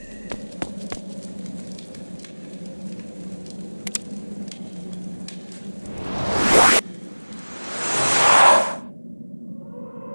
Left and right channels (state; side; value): inverted; both; correlation -1.00